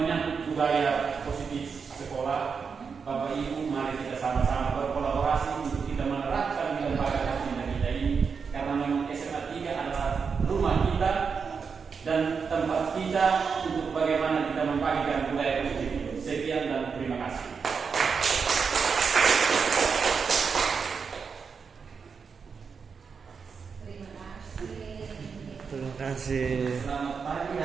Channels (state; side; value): quieter; left; 5.7 dB